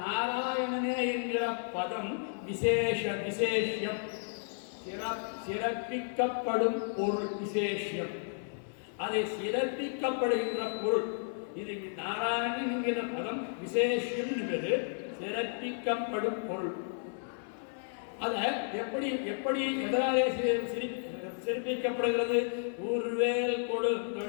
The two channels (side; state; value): right; silent; 56 dB below the other